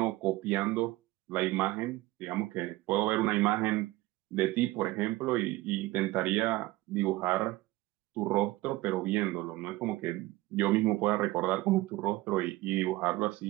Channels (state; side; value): quieter; left; 18.7 dB